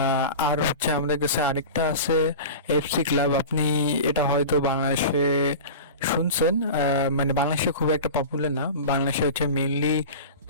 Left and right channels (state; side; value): inverted; both; correlation -0.32